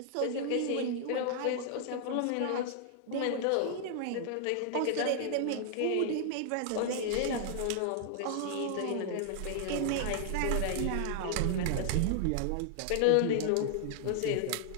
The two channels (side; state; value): both; different; correlation 0.00